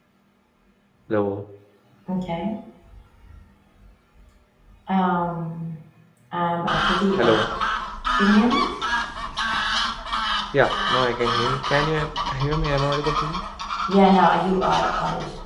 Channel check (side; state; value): both; identical; correlation 1.00